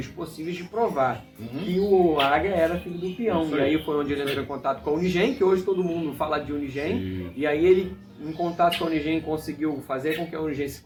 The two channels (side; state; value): both; identical; correlation 1.00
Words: possíveis de provar que o Águia era filho do peão. E aí foi onde ele entrou em contato com a Unigen, que hoje todo mundo fala de Unigen. E aí ele, em contato com a Unigen, conseguiu fazer com que a Unigen se